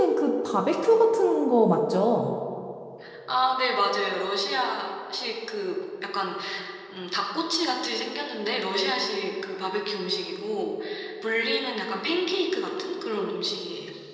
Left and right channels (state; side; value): identical; both; correlation 1.00